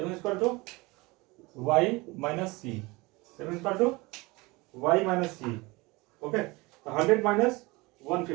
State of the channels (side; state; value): left; quieter; 23.7 dB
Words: y minus c. Saving is equal to y minus c. Okay. 100 minus